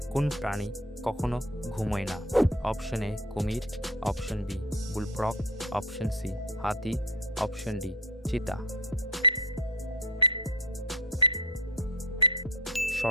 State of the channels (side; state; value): both; normal; correlation 0.29